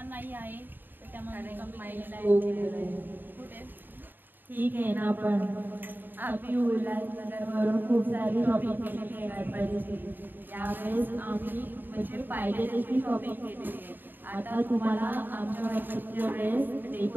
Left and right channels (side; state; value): left; late; 0.092 ms